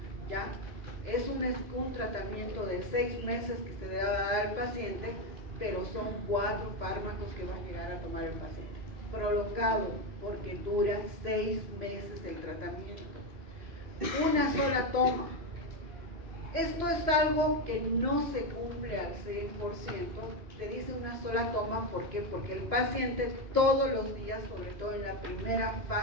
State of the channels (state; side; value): late; left; 3.0 ms